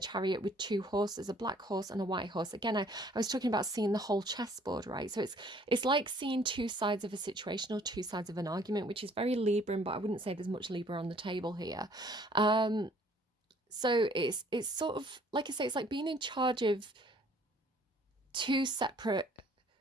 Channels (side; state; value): both; normal; correlation 0.58